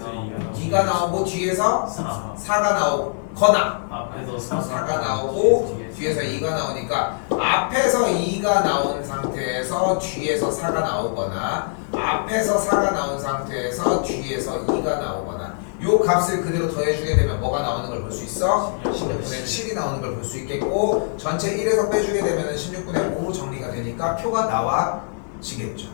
2가 나오고 뒤에서 4. 4가 나오거나 앞에서 4가 나오고 뒤에서 2가 나오니까 앞에서 2가 나온 상태에서 뒤에서 4가 나오거나 앞에서 4가 나온 상태에서 뒤에서 2가 나오거나 요 값을 그대로 더해주게 되면 뭐가 나오는 걸 볼 수 있어? 16분의 7이 나오는 걸 볼 수 있겠고 전체 1에서 빼주게 되면 16분의 5로 정리가 되니까 표가 나와지겠죠.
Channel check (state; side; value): silent; right; 64 dB below the other